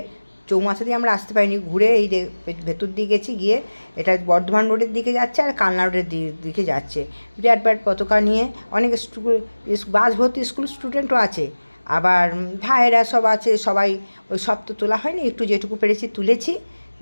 চৌমাথা দিয়ে আমরা আসতে পারিনি, ঘুরে এই ভেতর দিয়ে গেছি, গিয়ে এটা বর্ধমান রোডের দিকে যাচ্ছে আর কালনা রোডের দিকে যাচ্ছে। বিরাট বিরাট পতাকা নিয়ে অনেক বাস ভর্তি স্কুল স্টুডেন্টও আছে, আবার ভাইয়েরা সব আছে। সবাই ওই সব তো তোলা হয়নি, একটু যেটুকু পেরেছি তুলেছি।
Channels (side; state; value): both; inverted; correlation -1.00